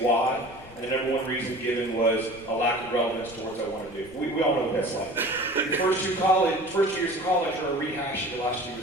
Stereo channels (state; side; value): noise; left; rumble, 20 dB below the sound